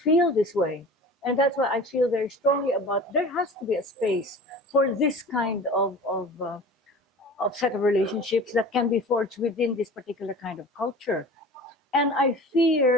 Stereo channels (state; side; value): normal; both; correlation 0.39